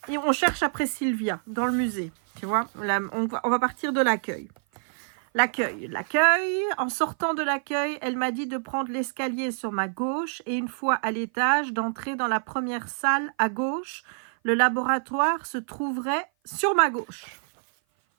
on cherche après Sylvia dans le musée. Tu vois, là, on va partir de l'accueil. L'accueil. En sortant de l'accueil, elle m'a dit de prendre l'escalier sur ma gauche et une fois à l'étage, d'entrer dans la première salle à gauche. Le laboratoire se trouverait sur ma gauche.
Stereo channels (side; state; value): left; silent; 56 dB below the other